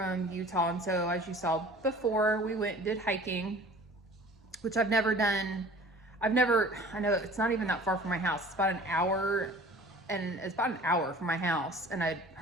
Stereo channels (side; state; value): both; normal; correlation 0.46